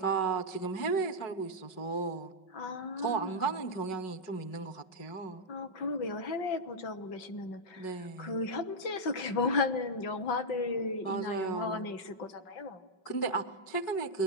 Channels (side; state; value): right; late; 5.3 ms